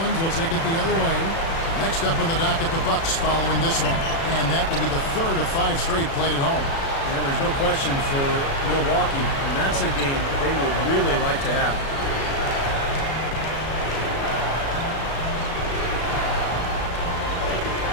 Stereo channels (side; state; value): right; late; 36 ms